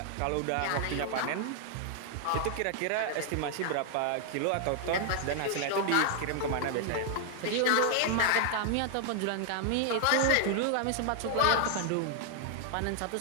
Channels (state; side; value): different; both; correlation 0.00